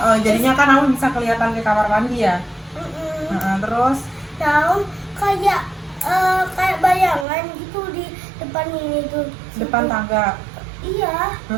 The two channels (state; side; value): drops out; left; at 7.2 s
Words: Jadinya kan Aun bisa kelihatan ke kamar mandi ya. Terus Nah, Aun kayak kayak bayangan gitu di depan ini tuh. depan Situ. tangga. Iya,